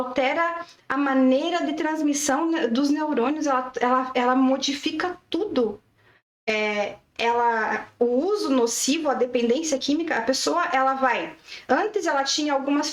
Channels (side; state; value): both; identical; correlation 1.00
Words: a maneira de transmissão dos neurônios, ela modifica tudo. O uso nocivo, a dependência química, a pessoa, ela vai... Antes ela tinha algumas